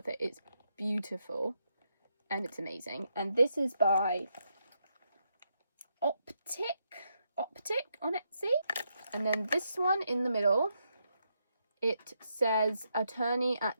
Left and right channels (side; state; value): both; inverted; correlation -0.80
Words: it. It's beautiful and it's amazing. And this is by Optic on Etsy. And then this one in the middle, it says Attorney